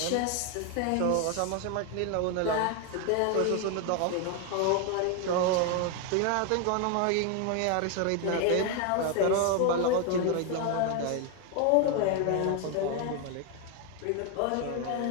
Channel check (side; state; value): both; different; correlation 0.01